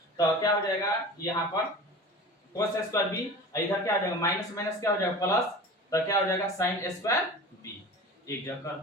तो क्या हो जाएगा? यहाँ पर cos स्क्वायर b इधर क्या हो जाएगा? माइनस माइनस क्या हो जाएगा? प्लस। तो क्या हो जाएगा? sin square b। एक जगह कर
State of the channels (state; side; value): normal; both; correlation 0.36